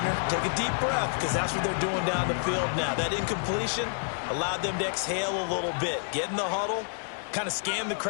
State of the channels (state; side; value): silent; right; 57 dB below the other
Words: Take a deep breath, because that's what they're doing down the field now. That incompletion allowed them to exhale a little bit. Get in the huddle, kind of scan the